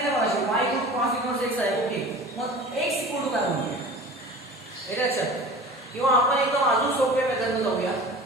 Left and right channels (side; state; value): both; normal; correlation 0.39